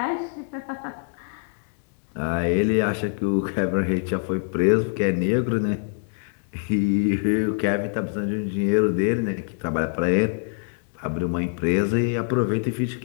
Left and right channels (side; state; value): right; silent; digital silence